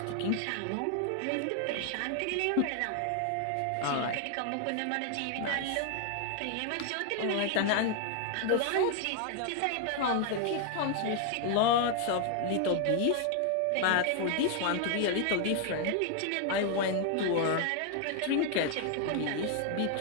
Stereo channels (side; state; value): both; different; correlation 0.00